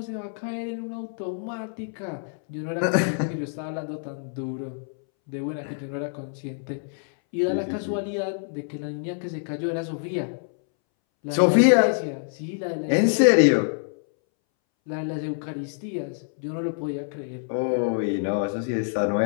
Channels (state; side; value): silent; right; 61 dB below the other